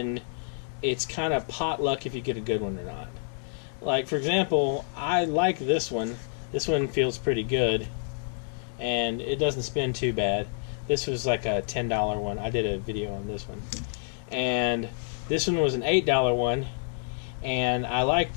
it's kind of potluck if you get a good one or not. Like, for example, I like this one. This one feels pretty good, and it doesn't spin too bad. This was like a $10 one. I did a video on this one. And this one was an $8 one, and I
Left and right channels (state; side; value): silent; right; digital silence